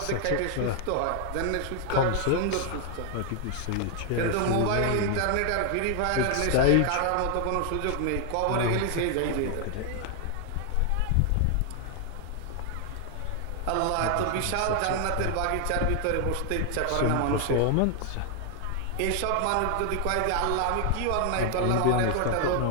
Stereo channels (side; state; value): both; different; correlation 0.00